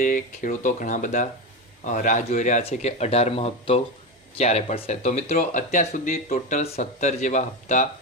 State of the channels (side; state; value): both; normal; correlation 0.17